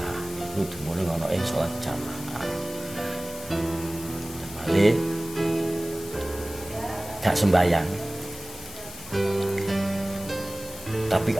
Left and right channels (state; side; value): noise; left; hiss, 14 dB below the sound